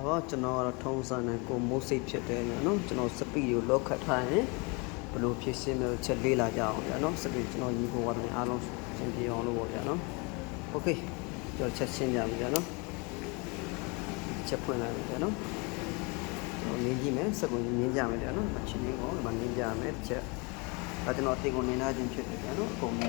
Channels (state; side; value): quieter; right; 30.1 dB